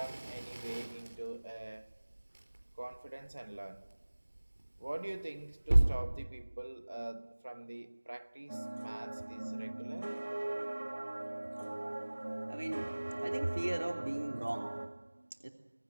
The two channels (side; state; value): both; inverted; correlation -1.00